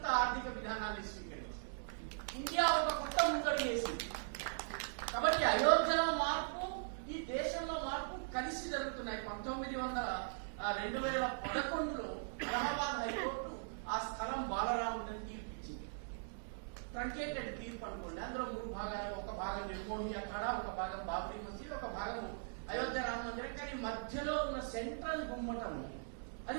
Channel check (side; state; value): left; silent; digital silence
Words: ఆర్థిక విధానాన్ని స్వీకరించింది. ఇండియా ఒక కొత్త ముందడుగు వేసింది. కాబట్టి అయోధ్యలో మార్పు, ఈ దేశంలో మార్పు కలిసి జరుగుతున్నాయి. 2011లో అలహాబాద్ హైకోర్టు ఆ స్థలం బాలరాముడిని తీర్పిచ్చింది. ట్రంకేటెడ్ తీర్పు అనుకోండి. అందులో 3 భాగాలు. ఒక భాగం నిర్మోహి అఖాడా, ఒక భాగం బాబ్రీ మసీద్, ఒక భాగం అయోధ్య రామ మందిరం. కానీ మధ్యలో ఉన్న సెంట్రల్ గుమ్మటము